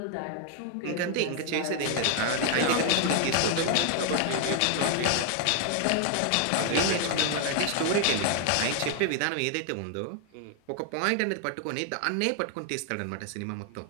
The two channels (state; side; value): different; both; correlation 0.00